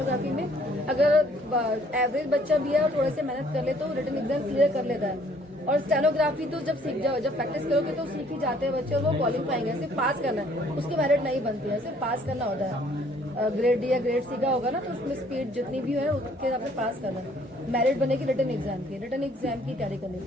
में अगर एवरेज बच्चा भी है और थोड़े से मेहनत कर ले तो रिटन एग्जाम क्लियर कर लेता है। और स्टेनोग्राफी तो जब सीख जाओ, जब प्रैक्टिस करोगे तो सीख ही जाते हैं बच्चे और वो क्वालिफाइंग है। सिर्फ पास करना है, उसकी मेरिट नहीं बनती है, सिर्फ पास करना होता है। ग्रेड डी या ग्रेड सी का होगा ना, तो उसमें स्पीड जितनी भी है उसके हिसाब से पास करना है। मेरिट बनेगी रिटन एग्जाम की, रिटन एग्जाम की तैयारी करनी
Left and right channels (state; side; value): normal; both; correlation 0.61